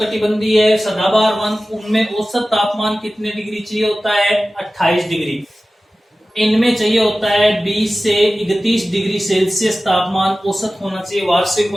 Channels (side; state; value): both; normal; correlation 0.96